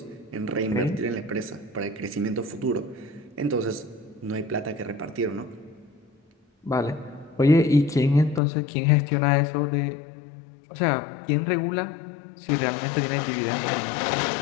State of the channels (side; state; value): right; drops out; at 8.4 s